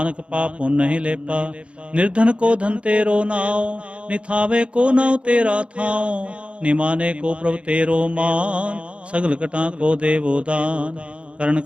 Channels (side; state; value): left; late; 0.060 ms